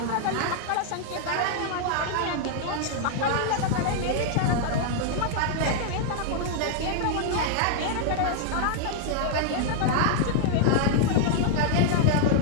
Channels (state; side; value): different; both; correlation -0.01